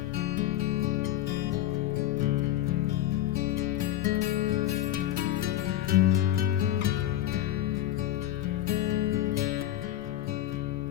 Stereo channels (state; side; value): quieter; right; 13.0 dB